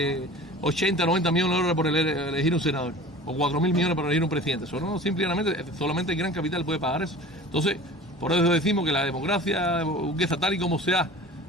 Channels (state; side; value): normal; both; correlation 0.40